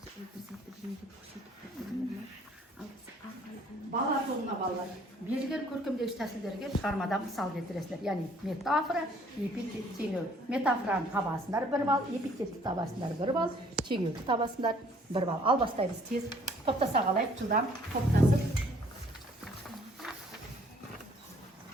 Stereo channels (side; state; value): both; normal; correlation 0.59